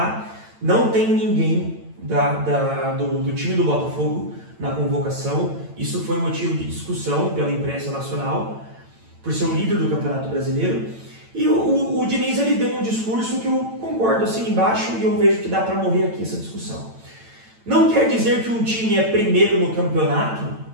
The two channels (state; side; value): late; left; 8.9 ms